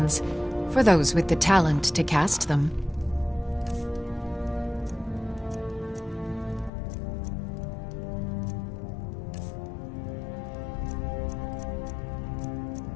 for those with the talent to cast them.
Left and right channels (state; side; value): drops out; right; at 6.7 s